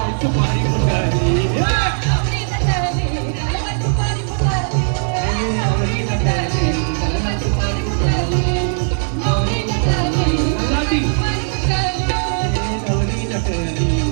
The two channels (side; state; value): left; silent; 58 dB below the other